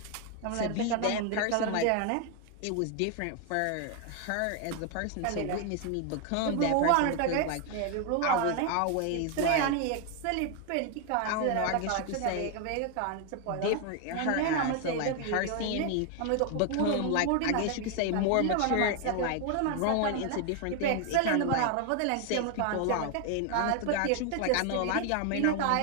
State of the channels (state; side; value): different; both; correlation 0.01